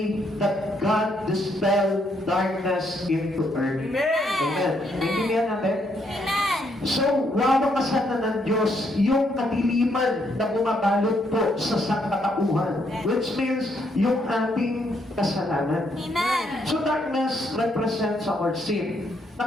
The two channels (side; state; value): both; normal; correlation 0.73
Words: that God dispelled darkness into earth. Amen. Amen. Naintindihan natin? Amen. So, wawakasan na ng Diyos yung kadiliman na bumabalot po sa sangkatauhan, which means yung ating kasalanan. Amen. So, darkness represents our sin.